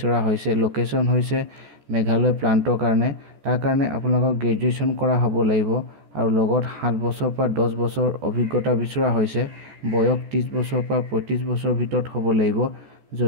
হৈছে। লোকেশ্যন হৈছে মেঘালয় প্লাণ্টৰ কাৰণে। তাৰ কাৰণে আপোনালোকক গ্ৰেজুৱেশ্যন কৰা হ'ব লাগিব আৰু লগত 7 বছৰ পৰা 10 বছৰ অভিজ্ঞতা বিচৰা হৈছে। বয়স 30 বছৰ পৰা 35 বছৰ ভিতৰত হ'ব লাগিব।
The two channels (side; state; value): left; late; 14 ms